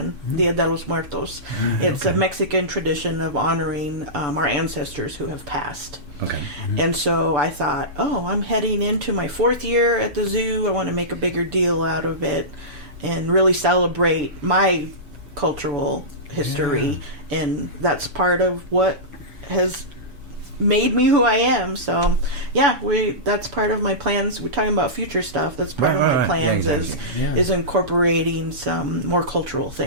Dia de los Muertos. It's a Mexican tradition of honoring our ancestors who have passed. Okay. And so I thought, I'm heading into my 4th year at the zoo. I want to make a bigger deal out of it and really celebrate my cultural history, and that's part of what has made me who I am. So that's part of my plans. We're talking about future stuff. That's part of my plans is incorporating some more cultural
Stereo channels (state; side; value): late; left; 7.1 ms